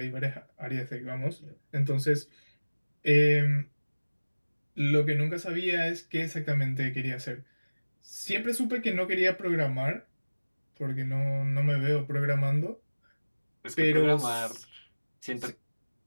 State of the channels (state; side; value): inverted; both; correlation -1.00